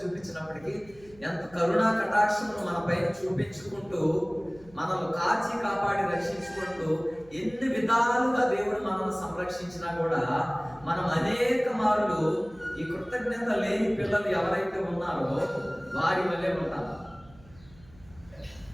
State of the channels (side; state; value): right; noise; hum, 25 dB below the sound